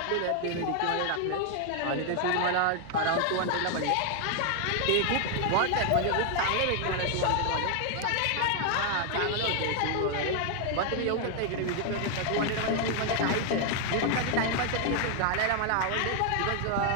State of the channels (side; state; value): both; different; correlation 0.00